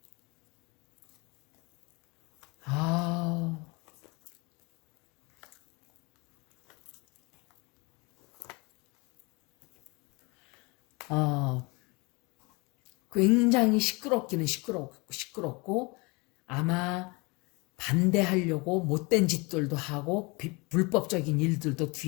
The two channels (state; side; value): quieter; right; 27.4 dB